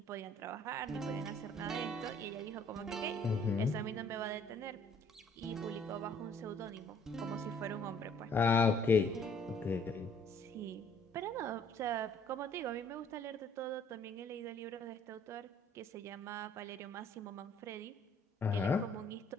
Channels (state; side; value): normal; both; correlation 0.60